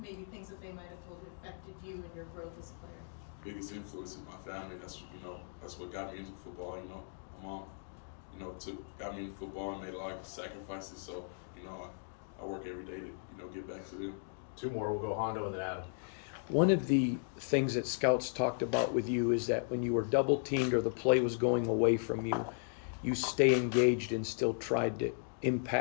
things that they might have told you affected you and your growth as a player? Biggest influence is my family. That's what got me into football. My mom, got me into football and made a lot of sacrifices. So I work every day to get back to them. 2 more. We'll go Hondo and then Adam. One of the things that scouts talked about with you is that when you were double teamed or the play was going away from you, you stay engaged and still tried to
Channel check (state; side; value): silent; right; digital silence